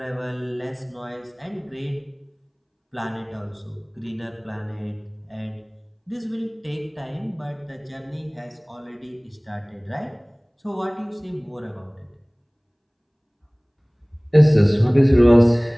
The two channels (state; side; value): identical; both; correlation 1.00